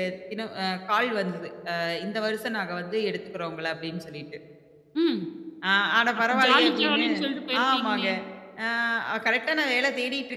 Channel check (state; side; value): identical; both; correlation 1.00